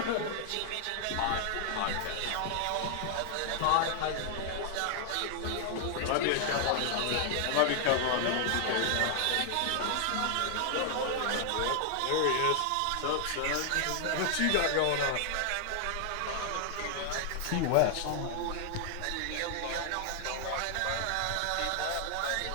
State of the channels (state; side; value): different; both; correlation 0.00